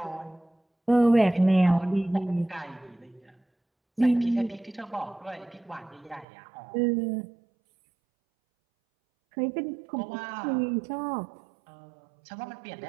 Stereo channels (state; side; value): drops out; left; at 6.2 s